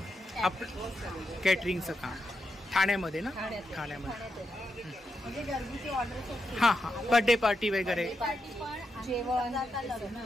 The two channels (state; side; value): normal; both; correlation 0.85